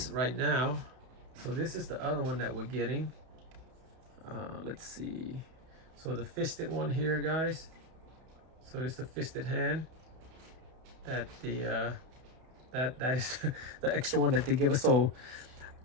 right now. So this is the other one that we're getting. Let's see. So the fisted one here, guys. So it's the fisted hand. That the that is the extra one that they give us. So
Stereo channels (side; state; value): left; late; 31 ms